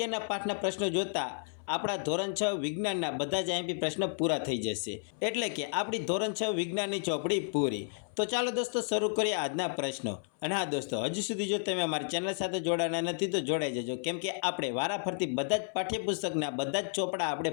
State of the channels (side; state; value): right; silent; 56 dB below the other